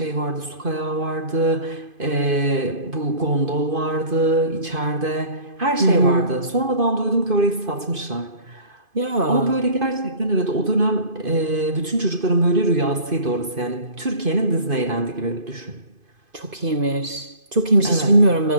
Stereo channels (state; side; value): late; left; 2.5 ms